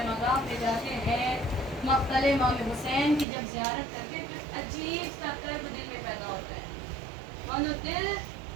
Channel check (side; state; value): left; drops out; at 3.2 s